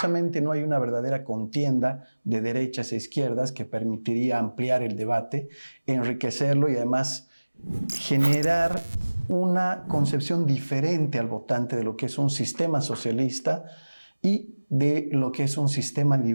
no hay una verdadera contienda de derechas e izquierdas que permitiría ampliar el debate, enriquecerlo y además generar una concepción diferente al votante de lo que es un sistema socialista y de lo que es un sistema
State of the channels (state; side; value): inverted; both; correlation -1.00